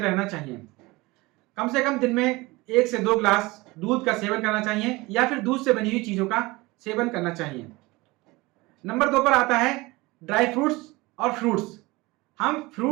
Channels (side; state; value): left; quieter; 22.3 dB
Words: चाहिए। कम से कम दिन में 1 से 2 गिलास दूध का सेवन करना चाहिए या फिर दूध से बनी हुई चीज़ों का सेवन करना चाहिए। नंबर 2 पर आता है ड्राई फ्रूट्स और फ्रूट्स। हम